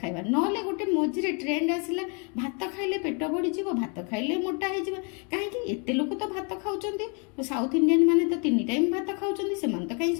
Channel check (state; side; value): quieter; right; 36.0 dB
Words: ଖାଇବା ନହେଲେ ଗୋଟେ ମଝିରେ ଟ୍ରେଣ୍ଡ ଆସିଲା ଭାତ ଖାଇଲେ ପେଟ ବଢିଯିବ ଭାତ ଖାଇଲେ ମୋଟା ହେଇଯିବ କାହିଁକି ଏତେ ଲୋକ ତ ଭାତ ଖାଉଛନ୍ତି ସାଉଥ ଇଣ୍ଡିଆନ ମାନେ ତ 3 ଟାଇମ୍ ଭାତ ଖାଉଛନ୍ତି ସେମାନେ ତ କାହିଁ